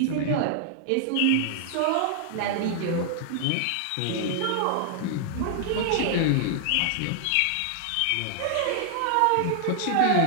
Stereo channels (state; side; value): different; both; correlation 0.00